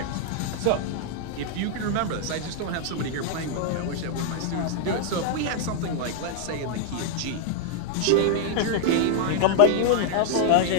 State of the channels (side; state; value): both; different; correlation 0.00